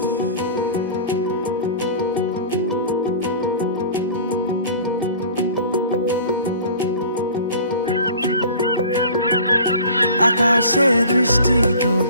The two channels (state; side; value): inverted; both; correlation -0.43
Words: আকাশে দৃষ্টি তোর,